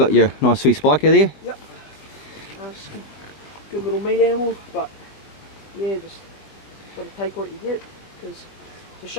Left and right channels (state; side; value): late; right; 20 ms